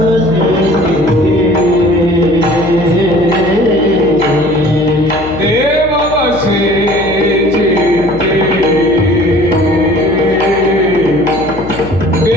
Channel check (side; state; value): left; noise; hum, 14 dB below the sound